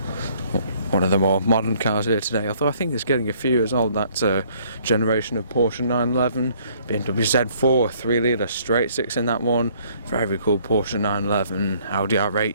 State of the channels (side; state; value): both; inverted; correlation -0.62